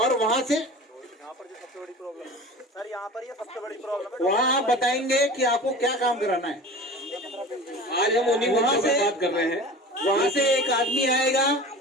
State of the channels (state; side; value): normal; both; correlation 0.37